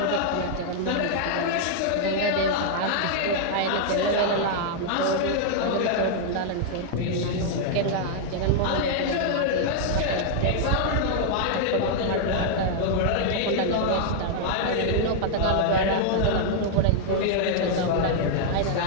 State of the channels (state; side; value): different; both; correlation -0.01